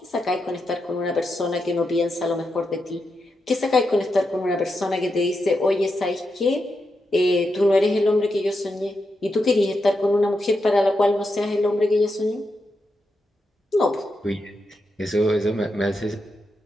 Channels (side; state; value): both; normal; correlation 0.86